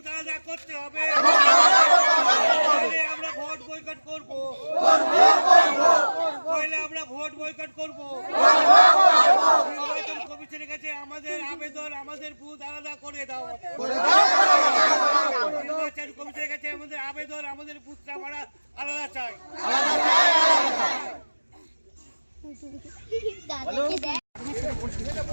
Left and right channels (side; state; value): both; inverted; correlation -1.00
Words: আলাদা করতে হবে। আমরা ভোট বয়কট করবো, আমরা ভোট বয়কট করবো। নির্বাচন কমিশনের কাছে আমাদের আবেদন, আমাদের বুথ আলাদা করে দাও। নির্বাচন কমিশনের কাছে আমাদের আবেদন, আমাদের বুথটা আমরা আলাদা চাই।